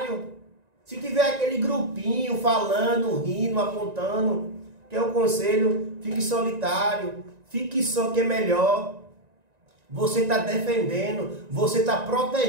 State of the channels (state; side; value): late; left; 1.9 ms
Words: Se tiver aquele grupinho falando, rindo, apontando, que é o conselho, fique solitário, fique só que é melhor. Você está defendendo, você está